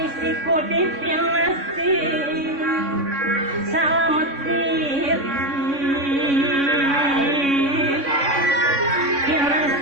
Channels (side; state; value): left; late; 3.6 ms